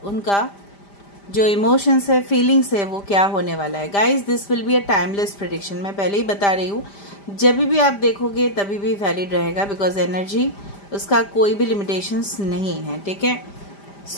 उनका जो इमोशंस है, फीलिंग्स है, वो क्या होने वाला है। Guys this will be a timeless prediction. मैं पहले ही बता रही हूँ, जब भी आप देखोगे तभी भी वैलिड रहेगा, बिकॉज एनर्जी उसका कोई भी लिमिटेशंस नहीं है। ठीक है,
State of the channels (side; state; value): right; late; 5.0 ms